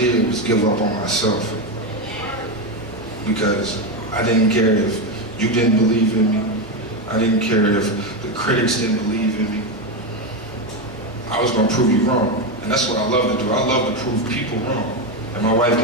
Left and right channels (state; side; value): normal; both; correlation 0.11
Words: was give up on myself. Because I didn't care if you didn't believe in me. I didn't care if the critics didn't believe in me. I was gonna prove you wrong. And that's what I love to do. I love to prove people wrong. And my wife